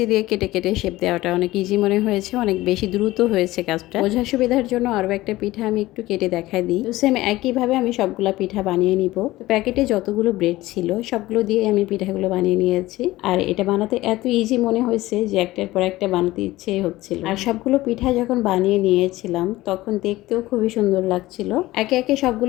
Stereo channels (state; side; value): quieter; right; 17.6 dB